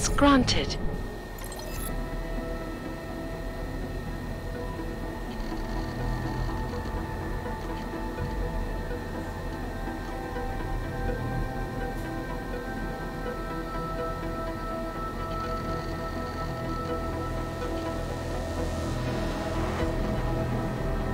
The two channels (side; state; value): both; identical; correlation 1.00